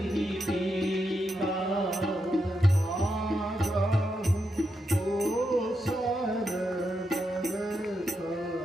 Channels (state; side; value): normal; both; correlation 0.84